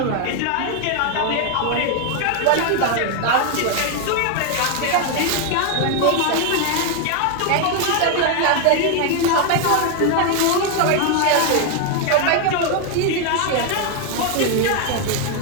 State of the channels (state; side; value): different; both; correlation 0.01